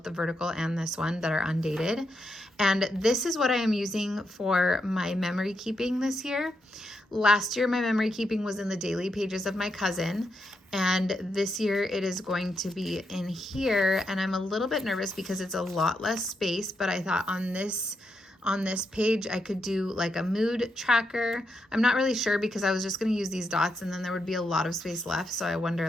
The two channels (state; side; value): normal; both; correlation 0.82